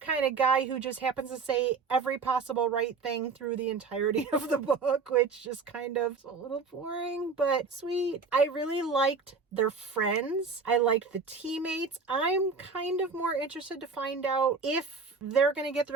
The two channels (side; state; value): left; quieter; 4.7 dB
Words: kind of guy who just happens to say every possible right thing through the entirety of the book, which just kind of is a little boring, but sweet. I really liked their friends. I liked the teammates. I'm kind of more interested to find out if they're going to get